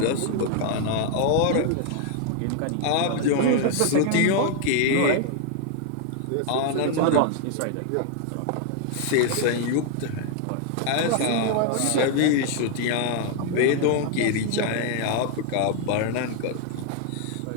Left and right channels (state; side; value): different; both; correlation 0.00